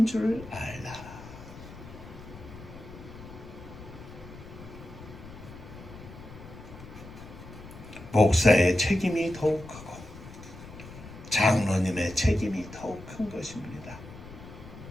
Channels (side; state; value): left; noise; rumble, 15 dB below the sound